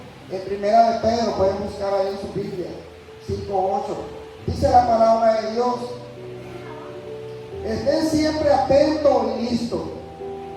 en 1 Pedro, pueden buscar ahí en su Biblia, 5:8, dice la palabra de Dios: estén siempre atentos y listos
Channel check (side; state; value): both; identical; correlation 1.00